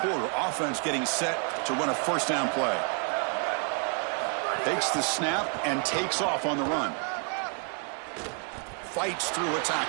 Offense getting set to run a first down play. Takes the snap and takes off on the run. Fights through a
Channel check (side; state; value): left; quieter; 39.3 dB